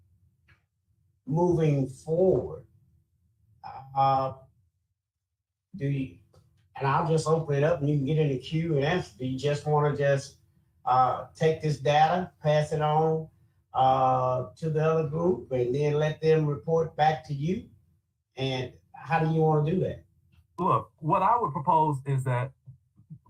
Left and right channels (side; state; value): both; identical; correlation 1.00